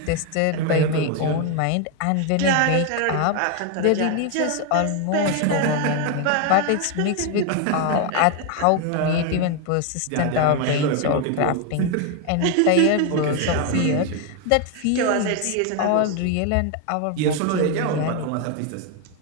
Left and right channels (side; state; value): both; different; correlation 0.01